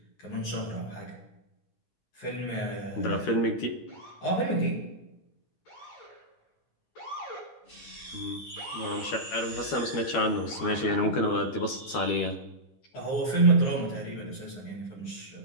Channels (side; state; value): right; late; 13 ms